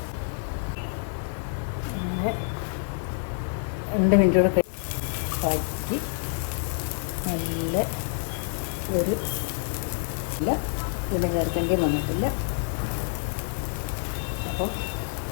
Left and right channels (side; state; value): right; silent; digital silence